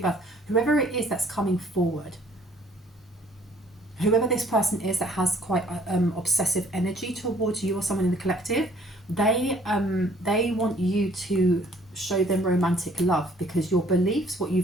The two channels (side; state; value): both; normal; correlation 0.59